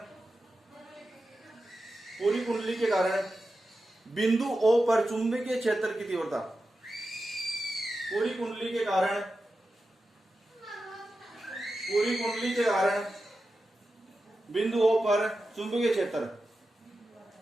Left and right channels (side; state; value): both; normal; correlation 0.91